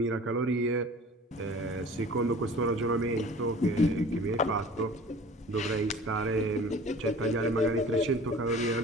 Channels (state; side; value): normal; both; correlation 0.44